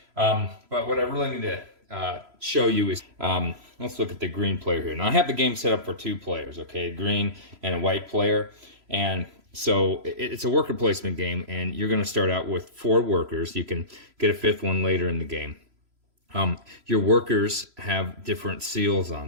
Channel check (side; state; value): left; late; 3.0 ms